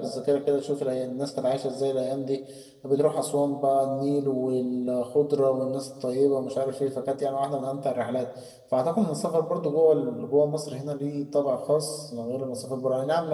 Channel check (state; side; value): identical; both; correlation 1.00